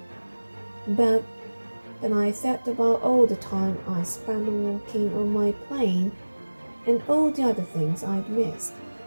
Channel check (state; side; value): inverted; both; correlation -1.00